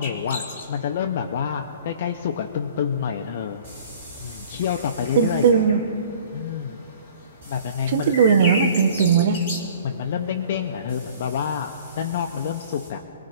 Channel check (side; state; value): both; inverted; correlation -0.49